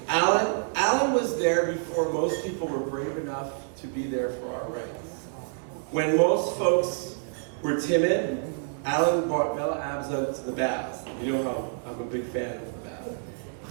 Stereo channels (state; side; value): silent; left; digital silence